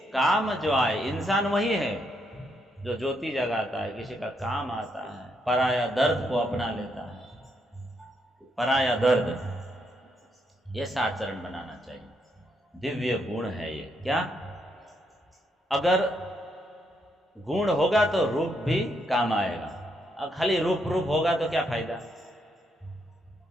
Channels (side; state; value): both; normal; correlation 0.77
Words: काम जो आए, इंसान वही है जो ज्योति जगाता है, किसी का काम आता है, पराया दर्द को अपना लेता है, पराया दर्द, ये आचरण बनाना चाहिए। दिव्य गुण है ये। क्या? अगर गुण होगा तो रूप भी काम आएगा, और खाली रूप होगा तो क्या फायदा।